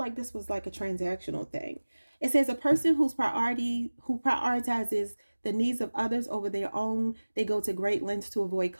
this was like a transactional thing. It says a person who prioritizes the needs of others over their own. They go to great lengths to avoid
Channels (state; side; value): inverted; both; correlation -1.00